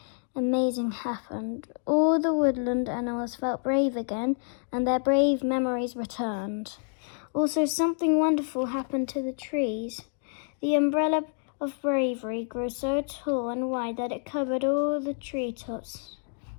amazing happened. All the woodland animals felt brave again, and their brave memories returned. Also, something wonderful happened to the trees. The umbrella of bravery grew so tall and wide that it covered all the treetops.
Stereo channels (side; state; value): right; silent; 58 dB below the other